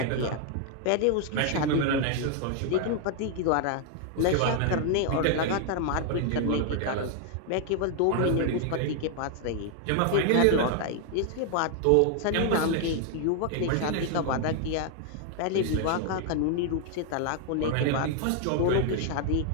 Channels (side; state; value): both; different; correlation 0.00